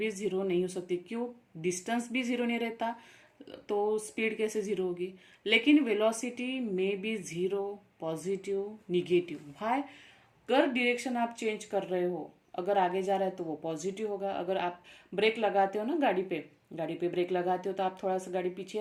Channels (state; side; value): identical; both; correlation 1.00